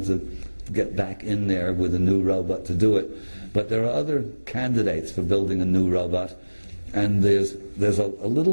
to get back in there with a new robot to do it. But there are other candidates for building a new robot, and there's a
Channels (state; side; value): inverted; both; correlation -1.00